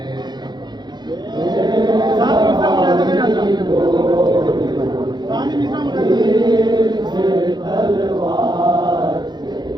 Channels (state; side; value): late; left; 0.21 ms